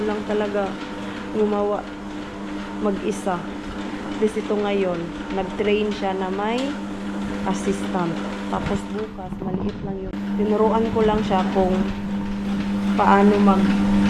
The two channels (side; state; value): both; identical; correlation 1.00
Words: lang talaga gumawa mag-isa. At least ito ngayon, nag-train siya na may assistant. Tapos bukas, maliit lang yung... Tinuruan ko lang siya kung paano